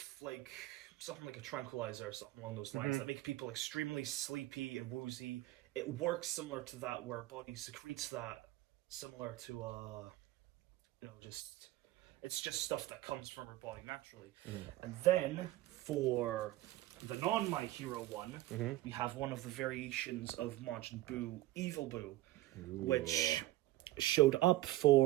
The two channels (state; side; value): quieter; left; 16.2 dB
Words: like something like a tranquilizer or something along those lines that make people extremely sleepy and woozy. It works similar to that, where body secretes that, similar to just, it's just stuff that comes from her body naturally. And then for the non My Hero one, we have one of the variations of Majin Buu, Evil Buu, which showed up